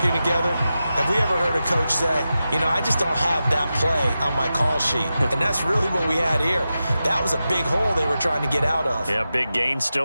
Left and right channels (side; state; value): both; inverted; correlation -0.92